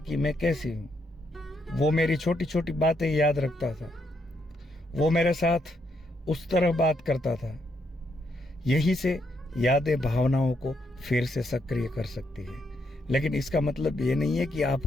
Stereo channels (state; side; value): normal; both; correlation 0.77